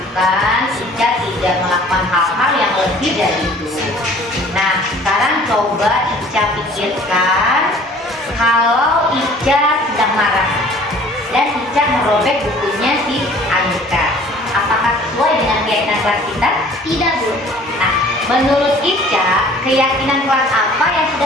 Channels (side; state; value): both; normal; correlation 0.51